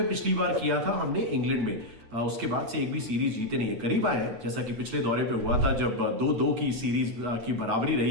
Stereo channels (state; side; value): late; left; 8.9 ms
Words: पिछली बार किया था हमने इंग्लैंड में। उसके बाद से एक भी सीरीज जीते नहीं है। करीब आए हैं जैसा कि पिछले दौरे पे हुआ था जब 2-2 की सीरीज की बराबरी